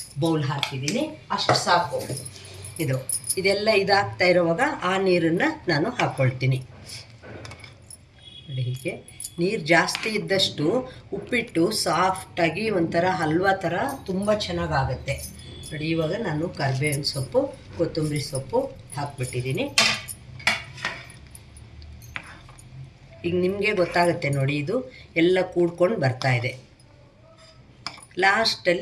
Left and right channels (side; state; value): both; identical; correlation 1.00